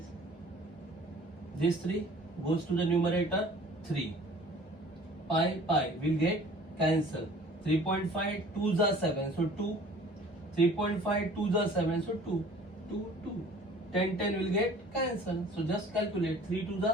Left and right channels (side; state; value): both; normal; correlation 0.49